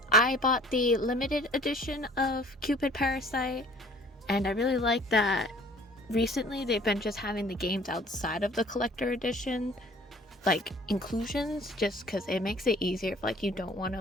I bought the limited edition of Cupid Parasite, and I really like that recently they've been just having the games outside of the collector edition, like inclusions, just because it makes it easier if like you don't want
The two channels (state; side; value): normal; both; correlation 0.52